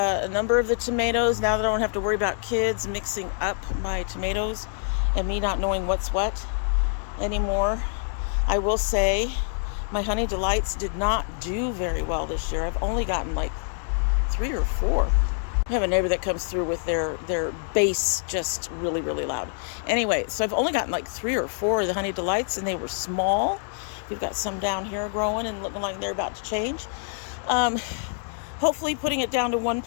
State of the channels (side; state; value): right; silent; digital silence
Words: number of the tomatoes now that I don't have to worry about kids mixing up my tomatoes and me not knowing what's what anymore. I will say my Honey Delights did not do very well this year. I've only gotten like 3 or 4. I have a neighbor that comes through with their bass just really, really loud. Anyway, so I've only gotten like 3 or 4 of the Honey Delights, and they were small. We've got some down here growing and looking like they're about to change. Hopefully putting it down to 1